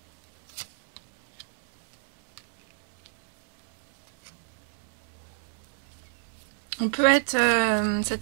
On peut être, cette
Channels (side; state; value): left; silent; 60 dB below the other